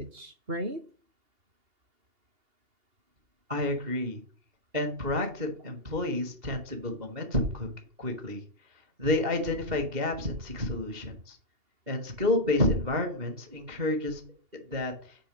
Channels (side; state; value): left; late; 2.7 ms